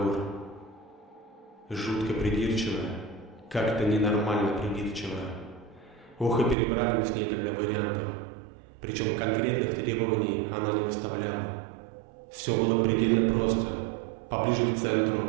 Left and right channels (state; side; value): drops out; left; at 6.6 s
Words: Жутко придирчивая, как-то ненормально придирчивая. Ох, и перебрали мы с ней тогда вариантов. Причем конкретных требований она не выставляла. Все было предельно просто. Поближе к